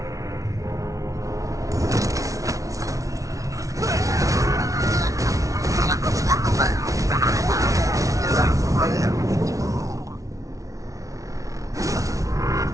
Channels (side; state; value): left; late; 0.16 ms